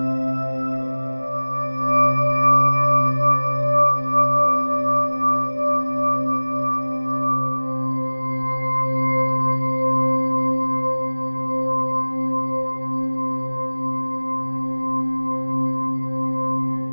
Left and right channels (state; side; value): inverted; both; correlation -1.00